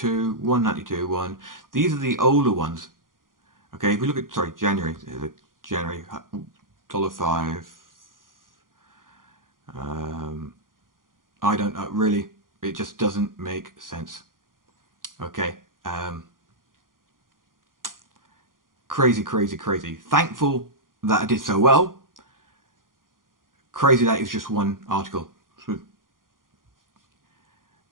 $192, $1. These are the older ones. Okay, if we look at, sorry, January, $5. I don't know, really, it just doesn't make sense. Okay, crazy. Thankful that I did so well. Crazy that it's just one article.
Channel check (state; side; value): late; left; 0.90 ms